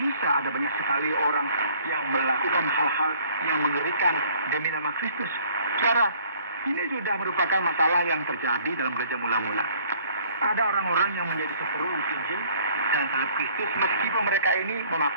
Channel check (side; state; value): both; inverted; correlation -0.57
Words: ada banyak sekali orang yang melakukan hal-hal yang mengerikan demi nama Kristus. Saudara, ini sudah merupakan masalah yang terjadi dalam gereja mula-mula. Ada orang-orang yang menjadi seteru Injil dan salib Kristus meskipun mereka ini